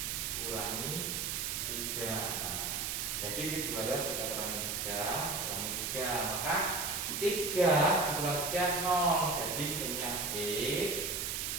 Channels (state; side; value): noise; right; hiss, 1 dB below the sound